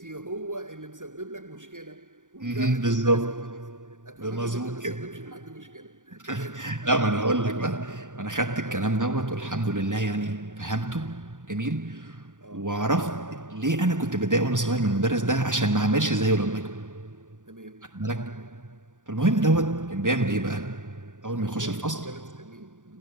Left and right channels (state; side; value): late; left; 0.87 ms